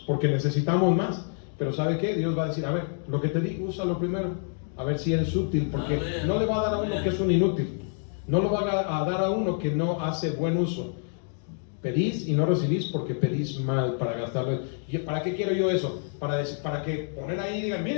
porque necesitamos más. Pero ¿sabe qué? Dios va a decir, a ver, lo que te digo, úsalo primero. A ver si eres útil, porque Amén. no le va a dar a uno que es un inútil. No lo va a dar a uno que no hace buen uso. Pedís y no recibís porque pedís mal para gastarlo. ¿Y para qué quiero yo eso? Para que poner ahí y digan,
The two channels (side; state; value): right; silent; 60 dB below the other